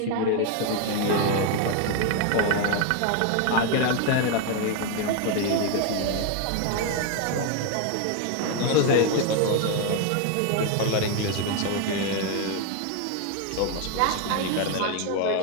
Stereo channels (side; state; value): both; different; correlation 0.01